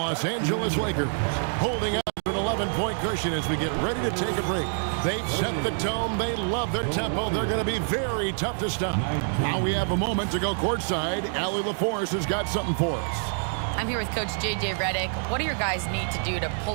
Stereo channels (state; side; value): silent; left; 60 dB below the other